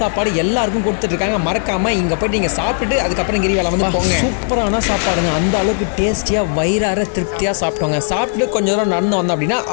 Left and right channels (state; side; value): silent; right; digital silence